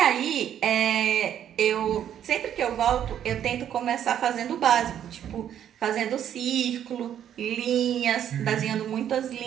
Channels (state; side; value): quieter; left; 10.1 dB